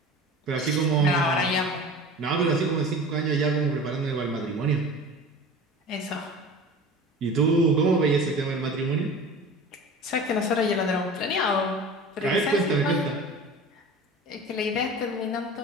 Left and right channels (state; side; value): normal; both; correlation 0.37